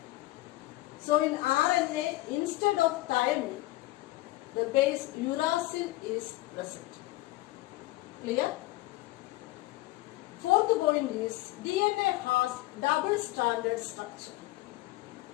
So in RNA, instead of thymine, the base uracil is present. Clear? Fourth point is DNA has double-stranded structure,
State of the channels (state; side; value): quieter; right; 18.7 dB